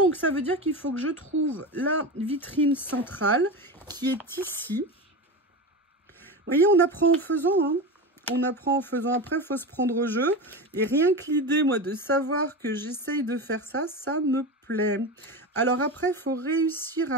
ça veut dire qu'il faut que je trouve la vitrine centrale qui est ici. Vous voyez, on apprend en faisant, hein. On apprend en faisant. Après, il faut se prendre au jeu. Et rien que l'idée, moi, de savoir que j'essaye de faire ça, ça me plaît. Alors après, il faut réussir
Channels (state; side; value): normal; both; correlation 0.23